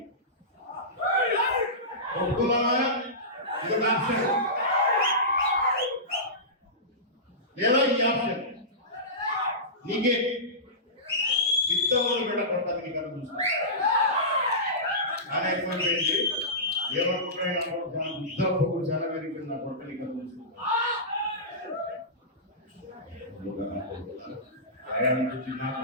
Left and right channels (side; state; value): both; normal; correlation -0.20